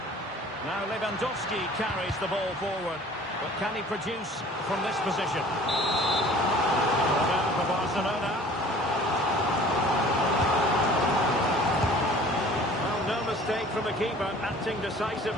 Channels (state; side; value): normal; both; correlation 0.49